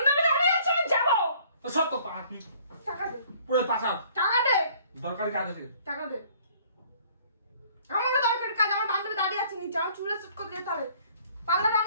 দাঁড়িয়ে আছে, আমি যাবো। তো সব তো পা তুই টাকা দে, পুরো পাশা টাকা দে, দরকারি কাজ আছে। টাকা দে। আমাকে দরকারি কাজ, আমার বান্ধবী দাঁড়িয়ে আছে নিচে, আমার চুলে সেট করতে যেতে হবে। পার্লারে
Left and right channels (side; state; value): both; inverted; correlation -0.57